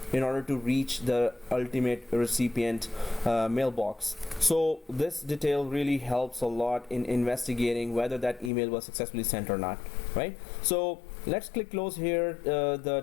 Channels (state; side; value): drops out; right; at 8.5 s